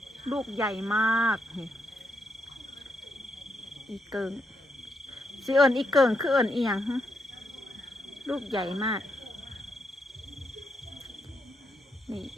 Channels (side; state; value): both; normal; correlation 0.81